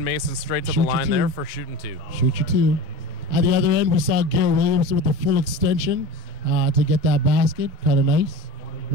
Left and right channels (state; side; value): late; left; 5.0 ms